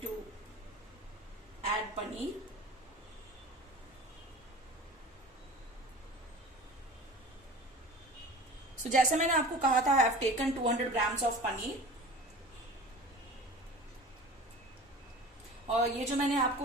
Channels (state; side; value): normal; both; correlation 0.39